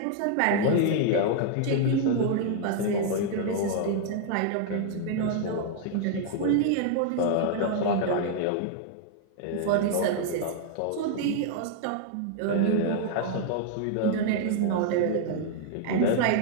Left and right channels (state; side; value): different; both; correlation 0.00